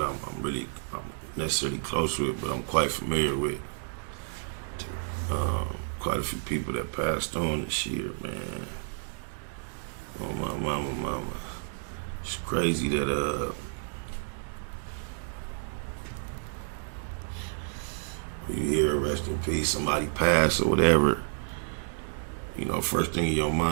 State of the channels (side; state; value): left; silent; digital silence